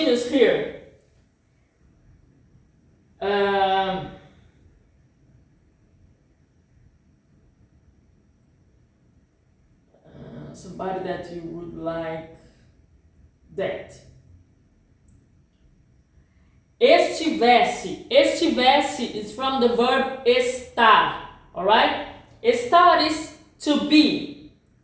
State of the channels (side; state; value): both; identical; correlation 1.00